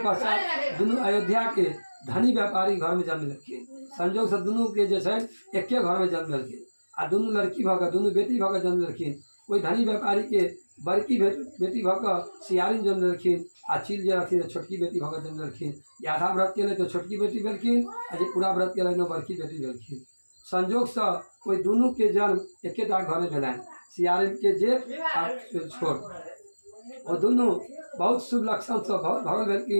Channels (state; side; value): inverted; both; correlation -1.00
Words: पश्चात दुनू अयोध्या के धनी व्यापारी घर में जन्म लेलखिन। संजोग से दुनू के जे छै एके घर में जन्म लेलखिन, आ दुनू लड़की भऽ कऽ, दुनू बेटी भऽ कऽ जन्म लेलखिन। ओहि धनी व्यापारी के बड़की बेटी भऽ कऽ सियारिन जन्म लेलखिन, आ चील जे रहथिन छोटकी बेटी भऽ कऽ जन्म लेलखिन। जे आधा व्रत केलै तऽ छोटकी बेटी भेलखिन, आ जे पूरा व्रत केलनि ओ बड़की बेटी भेलखिन। संजोग से ओहि दुनू के जन्म एकेटा घर में भेलनि, सियारिन के जेठ आ छोट। वो दुनू बहुत शुभ लक्षण से भरल